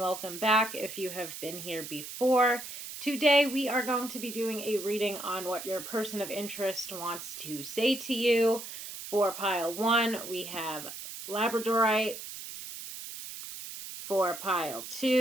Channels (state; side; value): noise; right; hiss, 10 dB below the sound